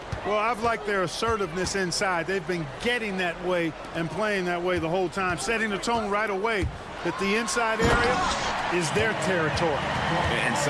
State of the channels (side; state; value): both; identical; correlation 1.00